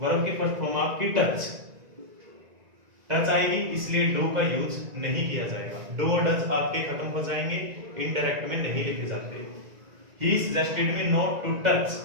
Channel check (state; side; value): late; left; 1.9 ms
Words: की फर्स्ट फॉर्म आपकी टच। टच आएगी इसलिए डू का यूज नहीं किया जाएगा। डू और डज आपके खत्म हो जाएंगे, इनडायरेक्ट में नहीं लिखे जाते। He suggested me not to touch,